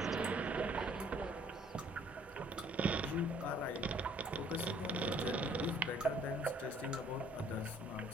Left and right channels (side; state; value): both; normal; correlation 0.60